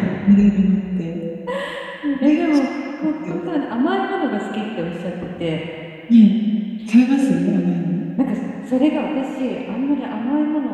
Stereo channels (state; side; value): identical; both; correlation 1.00